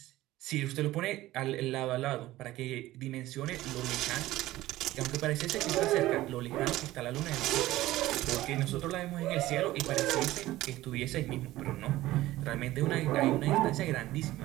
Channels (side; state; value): left; quieter; 16.4 dB